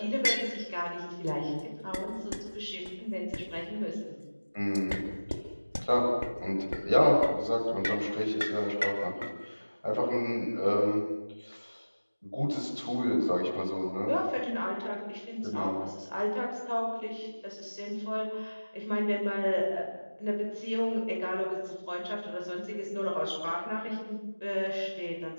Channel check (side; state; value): both; inverted; correlation -1.00